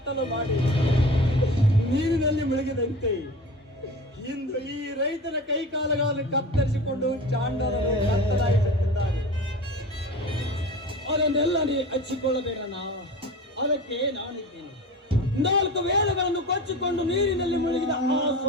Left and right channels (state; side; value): normal; both; correlation 0.35